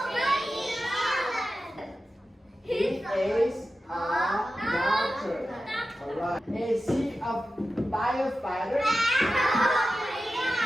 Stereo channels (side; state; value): both; normal; correlation 0.93